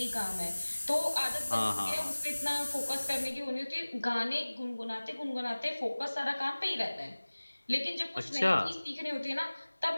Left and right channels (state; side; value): inverted; both; correlation -1.00